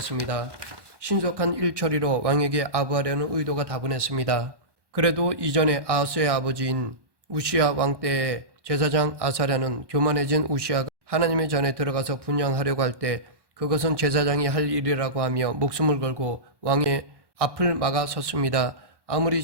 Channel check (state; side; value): late; left; 1.1 ms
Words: 신속한 일처리로 왕에게 아부하려는 의도가 다분했습니다. 그래도 이전에 아하스의 아버지인 우시야 왕 때의 제사장 아사랴는 교만해진 우시야가 하나님의 전에 들어가서 분향하려고 할 때 그것은 제사장이 할 일이라고 하며 목숨을 걸고 왕의 앞을 막아 섰습니다. 아무리